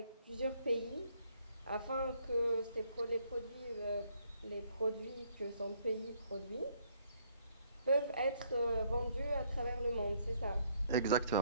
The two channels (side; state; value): both; inverted; correlation -0.68